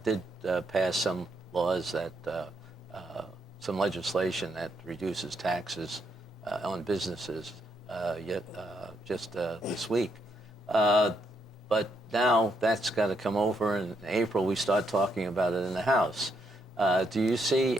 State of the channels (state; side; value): normal; both; correlation 0.76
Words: did pass some laws that, some legislation that reduces taxes on businesses just this week. But now that's got to come over, and in April we start talking about it in the House. Do you see